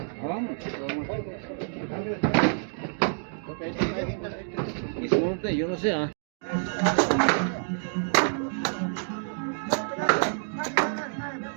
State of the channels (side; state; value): left; silent; digital silence